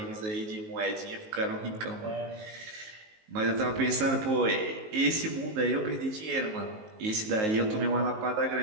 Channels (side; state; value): left; late; 19 ms